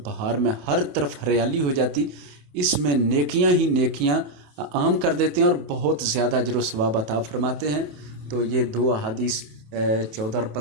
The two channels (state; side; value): late; left; 28 ms